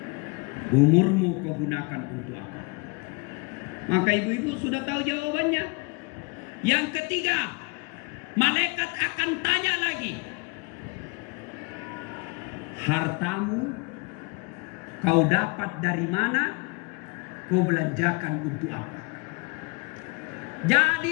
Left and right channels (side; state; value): right; quieter; 29.0 dB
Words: Umurmu kau gunakan untuk apa? Maka ibu-ibu sudah tahu jawabannya. Yang ketiga, malaikat akan tanya lagi. Hartamu kau dapat dari mana? Kau belanjakan untuk apa?